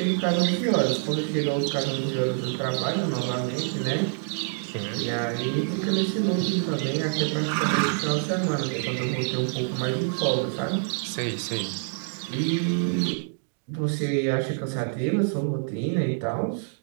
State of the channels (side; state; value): left; silent; digital silence